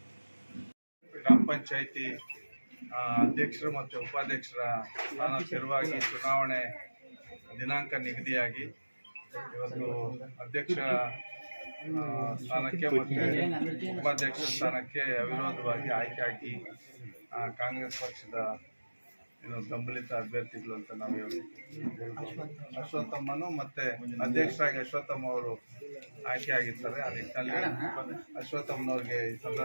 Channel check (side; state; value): both; inverted; correlation -1.00